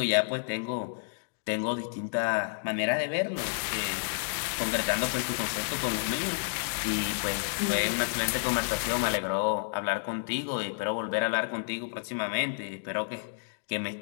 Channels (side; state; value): right; silent; digital silence